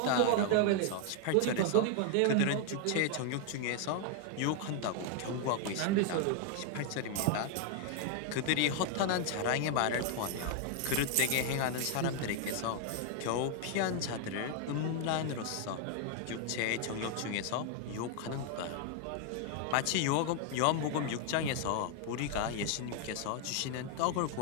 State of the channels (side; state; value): both; different; correlation 0.00